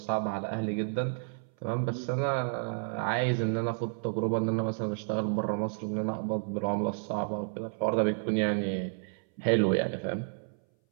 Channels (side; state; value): left; silent; 57 dB below the other